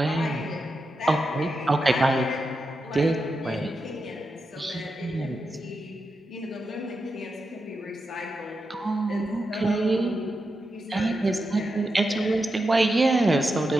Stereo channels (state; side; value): normal; both; correlation 0.88